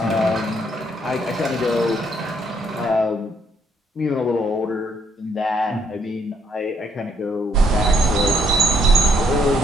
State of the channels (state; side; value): normal; both; correlation 0.70